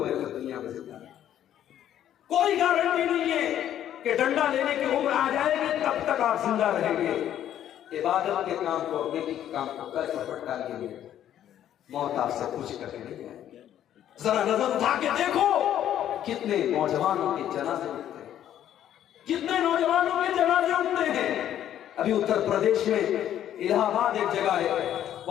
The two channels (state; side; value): quieter; right; 11.0 dB